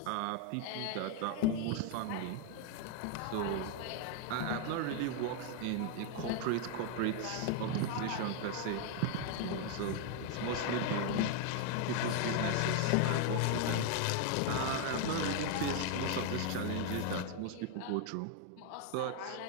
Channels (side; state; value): both; different; correlation 0.01